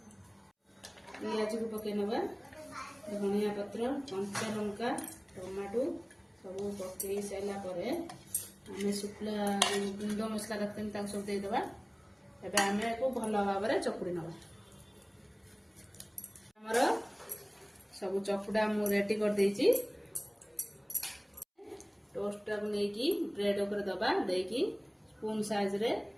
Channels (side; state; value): both; identical; correlation 1.00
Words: पियाज को पकई नवा धनिया पत्र कंचा लंका टमाटो सब पकई सारा आम शुक्ला गुंड मसला रखते सब देदेबा आम को भल भाव चकुड़ी नवा आमर सब चकुड़ा मु रेडी कर देइछि टोस्ट को लेकिन ब्रेड ऊपर दबा देकी स्पून साइज रे